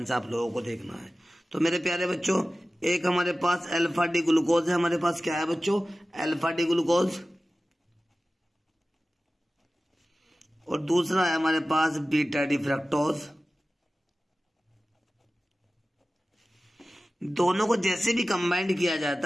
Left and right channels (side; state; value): both; normal; correlation 0.96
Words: से आप लोगों को देखना है। तो मेरे प्यारे बच्चों, एक हमारे पास अल्फा डी ग्लूकोज है। हमारे पास क्या है बच्चों? Alpha D glucose. और दूसरा है हमारे पास बीटा डी फ्रक्टोज। दोनों को जैसे भी कंबाइंड किया